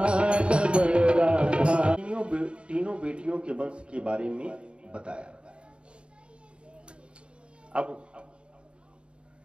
तीनों बेटियों के वंश के बारे में बताया। अब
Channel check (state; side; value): late; left; 0.055 ms